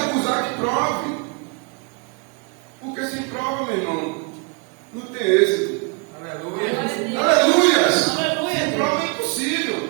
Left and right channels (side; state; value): left; quieter; 34.0 dB